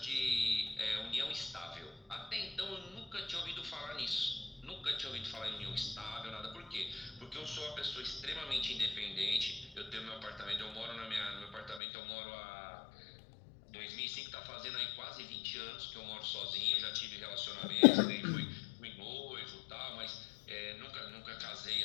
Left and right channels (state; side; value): drops out; right; at 11.8 s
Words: de união estável, até então eu nunca tinha ouvido falar nisso. Nunca tinha ouvido falar em união estável, nada. Por quê? Porque eu sou uma pessoa extremamente independente. Eu tenho meu apartamento, no meu apartamento eu moro há 2005, tá fazendo aí quase 20 anos que eu moro sozinho. Já tive relacionamentos, fui noivo e tal, mas nunca casei